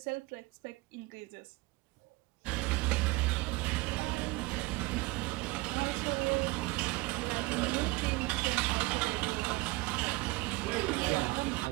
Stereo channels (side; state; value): left; quieter; 22.6 dB